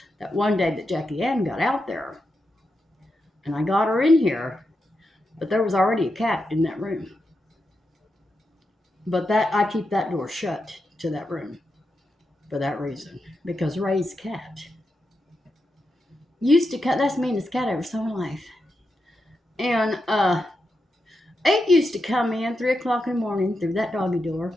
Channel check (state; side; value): normal; both; correlation 0.87